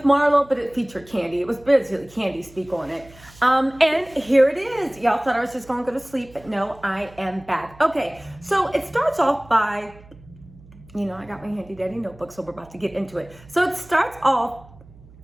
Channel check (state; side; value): noise; right; hum, 23 dB below the sound